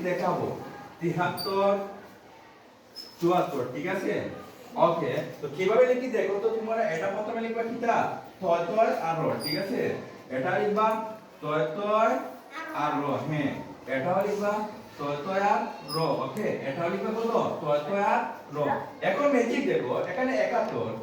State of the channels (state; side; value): identical; both; correlation 1.00